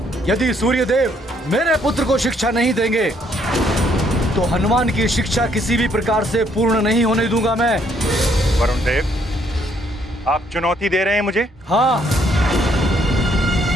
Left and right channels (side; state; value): both; normal; correlation 0.68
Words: यदि सूर्यदेव मेरे पुत्र को शिक्षा नहीं देंगे तो हनुमान की शिक्षा किसी भी प्रकार से पूर्ण नहीं होने दूंगा मैं। वरुण देव, आप चुनौती दे रहे हैं मुझे? हाँ,